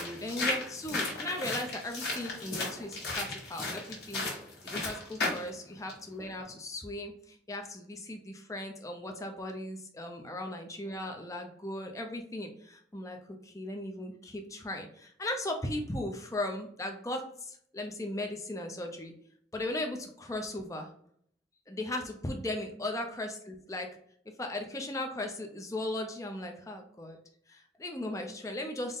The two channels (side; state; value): both; normal; correlation 0.43